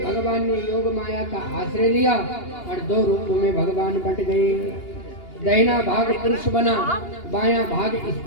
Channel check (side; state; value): right; late; 2.8 ms